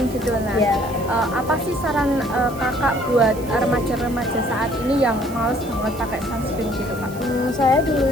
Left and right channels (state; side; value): noise; right; hiss, 18 dB below the sound